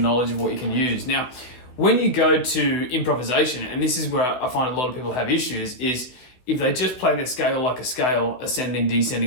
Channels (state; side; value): late; right; 16 ms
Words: knowledge of what you can use. Now, when you go to improvisation, and this is where I find a lot of people have issues, is if they just play the scale like a scale, ascending,